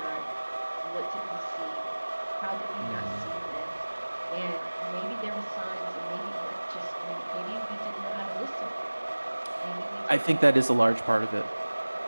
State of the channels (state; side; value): inverted; both; correlation -1.00